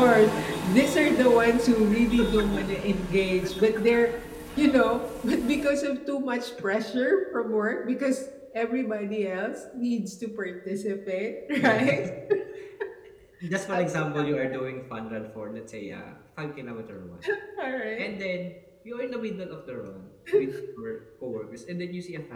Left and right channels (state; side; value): identical; both; correlation 1.00